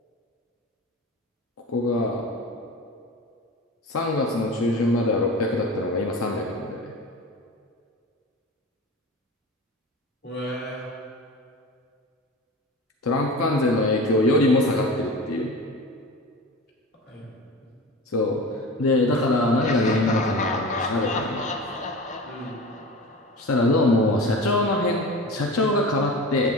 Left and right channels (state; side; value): normal; both; correlation 0.33